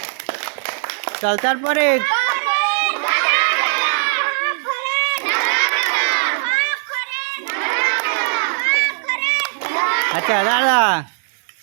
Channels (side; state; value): left; silent; 67 dB below the other